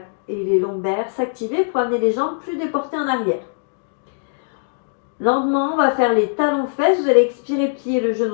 et les lombaires s'activer pour amener les jambes plus déportées en arrière. Lentement, on va faire les talons-fesses. Vous allez expirer, plier le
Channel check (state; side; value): silent; right; digital silence